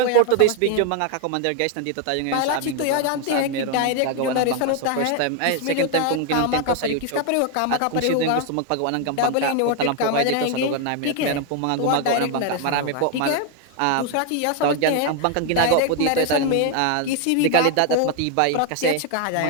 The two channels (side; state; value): both; different; correlation 0.01